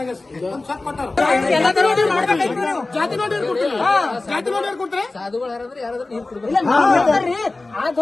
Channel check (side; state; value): right; quieter; 3.2 dB